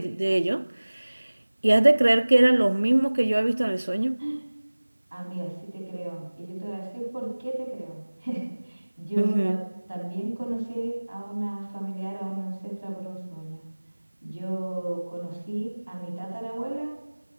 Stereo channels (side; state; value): both; inverted; correlation -1.00